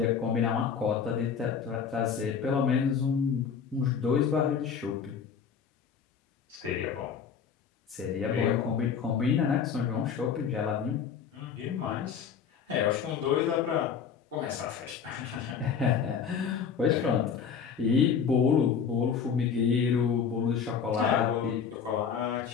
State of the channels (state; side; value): quieter; right; 6.8 dB